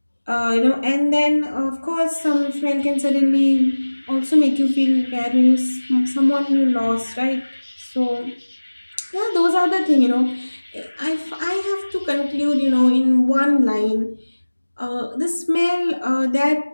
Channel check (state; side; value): inverted; both; correlation -1.00